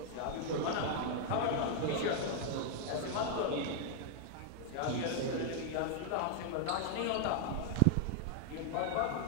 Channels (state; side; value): different; both; correlation 0.00